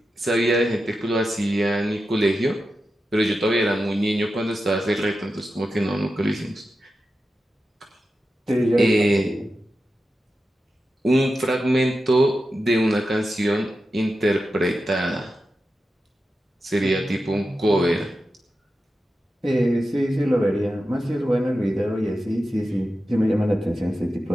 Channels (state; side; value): normal; both; correlation 0.91